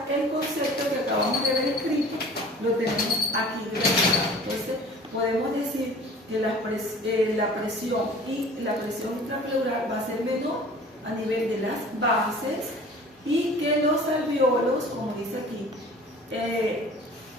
el concepto que acabamos de ver escrito, lo tenemos aquí graficado. Entonces podemos decir que la presión intrapleural va a ser menor a nivel de las bases, y que los alveolos, como dice aquí,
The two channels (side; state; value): both; normal; correlation 0.45